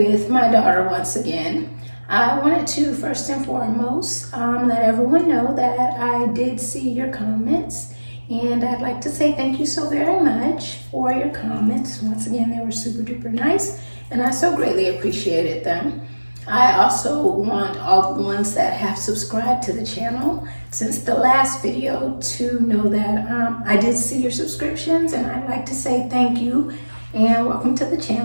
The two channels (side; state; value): both; inverted; correlation -1.00